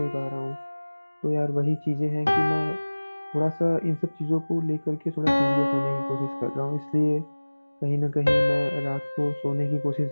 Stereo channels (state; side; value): inverted; both; correlation -1.00